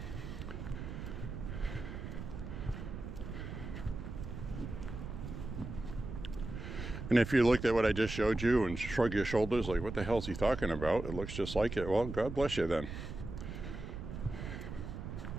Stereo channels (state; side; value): noise; right; rumble, 8 dB below the sound